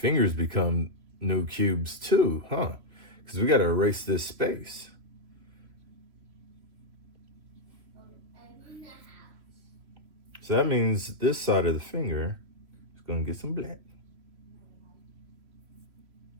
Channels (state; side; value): late; left; 3.0 ms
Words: become new cubes too, huh? Because we got to erase this space. So that means this side of the finger is going to get some black.